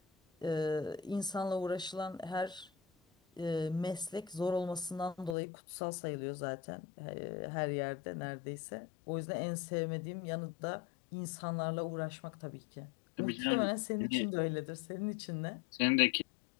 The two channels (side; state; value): right; drops out; at 5.4 s